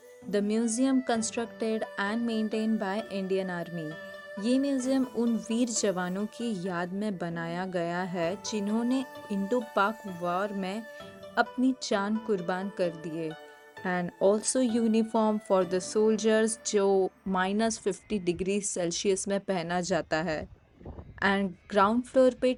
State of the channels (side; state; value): both; identical; correlation 1.00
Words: the museum constructed and maintained by Indian Army. ये museum उन वीर जवानों की याद में बनाया गया है जिन्होंने इंडो पाक वॉर में अपनी जान कुर्बान कर दिए and also uniform for the soldiers जो -50 डिग्री सेल्सियस में पहना जाता है एंड ग्राउंड फ्लोर पे